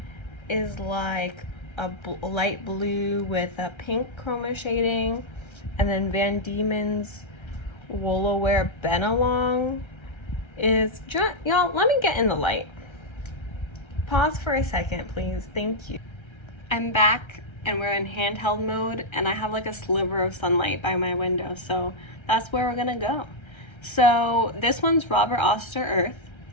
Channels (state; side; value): late; right; 1.3 ms